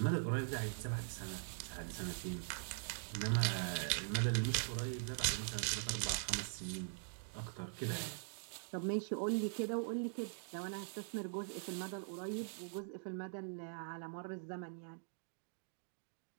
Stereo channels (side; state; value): left; silent; digital silence